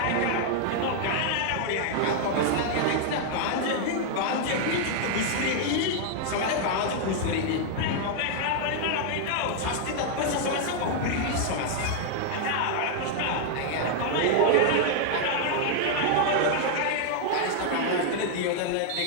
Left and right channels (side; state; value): both; different; correlation 0.00